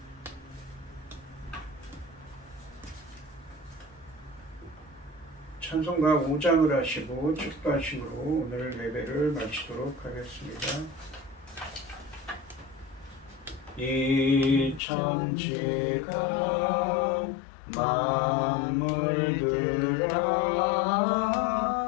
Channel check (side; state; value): right; drops out; at 14.8 s